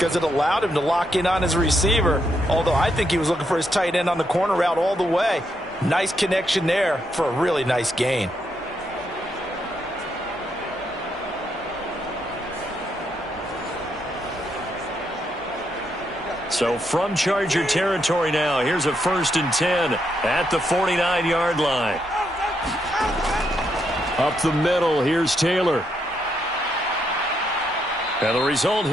it allowed him to lock in on his receiver, although I think he was looking for his tight end on the corner route all the way. Nice connection there for a really nice gain. So from Charger territory now, here's a 1st and 10 at the 49-yard line. Up the middle, here's Taylor. And the result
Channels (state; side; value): normal; both; correlation 0.79